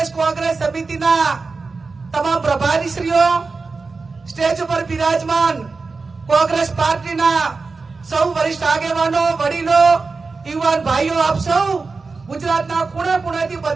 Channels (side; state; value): left; quieter; 4.2 dB